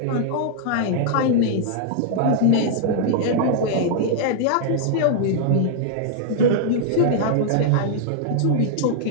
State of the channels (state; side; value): different; both; correlation -0.01